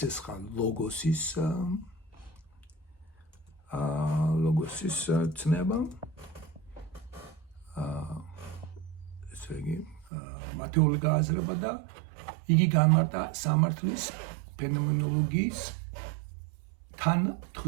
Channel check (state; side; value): drops out; left; at 10.1 s